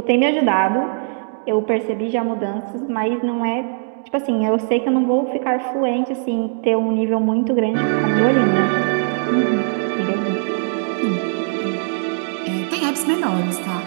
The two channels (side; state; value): left; silent; digital silence